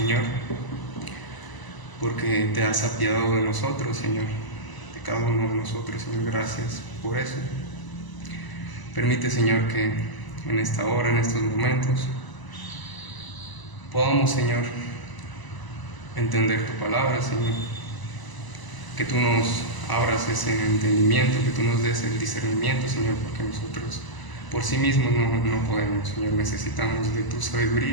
porque te has apiadado de nosotros, Señor, de cada uno de nosotros, Señor. Gracias por eso. Permite, Señor, que en esta hora, en estos momentos, podamos, Señor, entender tu palabra, Señor, que tú nos abras ese entendimiento, que tú nos des el discernimiento, Señor, porque nosotros por sí mismos no podemos, Señor. Necesitamos de tu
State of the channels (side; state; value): right; late; 1.0 ms